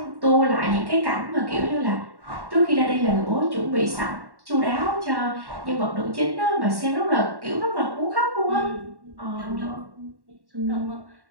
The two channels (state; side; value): late; left; 1.1 ms